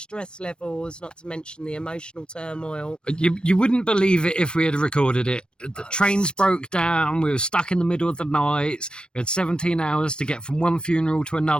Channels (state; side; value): late; right; 0.054 ms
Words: levels, not to mention the emotional turmoil. You wouldn't believe it if we had recorded it. The trains broke down. We were stuck in the middle of the night. We had 17 hours to get from one funeral to